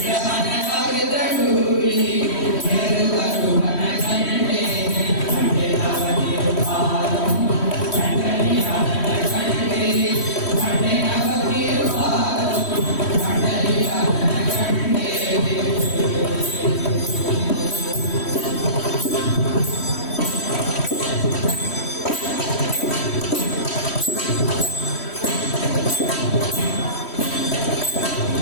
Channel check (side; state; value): right; late; 3.1 ms